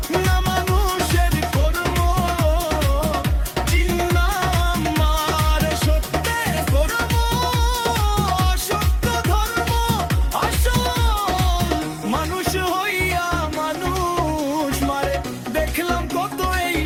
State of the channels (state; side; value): identical; both; correlation 1.00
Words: না মানুষের কর্ম চিনলাম মার। সত্যের কর্ম অসত্য ধর্ম আসল, মানুষ হইয়া মানুষ মারে, দেখলাম কত এই